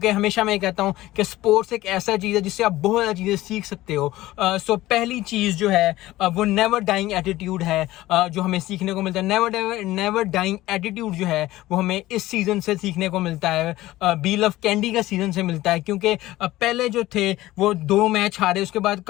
हमेशा मैं कहता हूँ कि स्पोर्ट्स एक ऐसा चीज़ है जिससे आप बहुत ज़्यादा चीज़ें सीख सकते हो। सो पहली चीज़ जो है वो नेवर डाइंग एटीट्यूड है जो हमें सीखने को मिलता है। नेवर डाइंग एटीट्यूड जो है वो हमें इस सीज़न से सीखने को मिलता है, बी लव कैंडी का सीज़न से मिलता है। क्योंकि पहले जो थे वो 2 मैच हारे, उसके बाद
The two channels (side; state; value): right; quieter; 16.7 dB